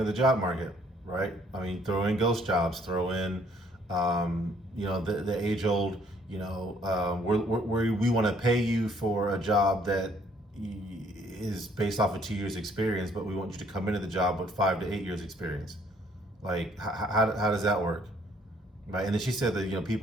the job market, right? I mean, throw in ghost jobs, throw in, the age-old, we want to pay you for a job that is based off of 2 years experience, but we want you to come into the job with 5 to 8 years experience. Like, how does that work? Right. And then she said that,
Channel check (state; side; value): normal; both; correlation 0.63